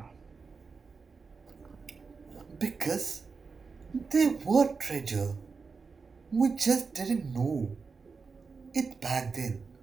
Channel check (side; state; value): left; quieter; 4.9 dB